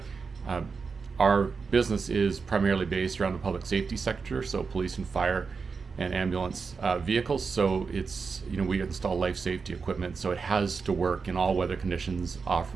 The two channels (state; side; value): quieter; left; 5.0 dB